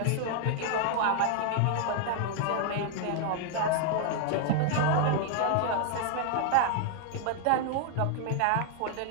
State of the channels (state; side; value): different; both; correlation 0.00